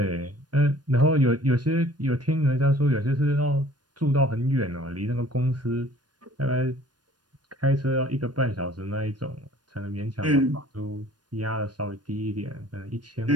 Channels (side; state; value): left; late; 0.69 ms